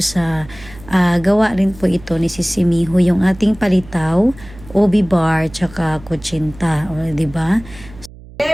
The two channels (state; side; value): noise; right; hum, 19 dB below the sound